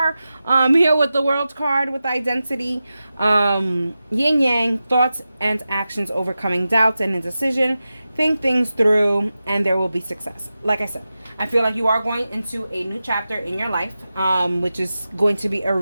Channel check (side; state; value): both; inverted; correlation -0.93